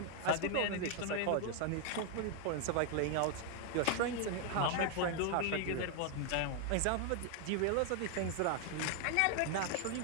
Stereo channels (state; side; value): different; both; correlation 0.00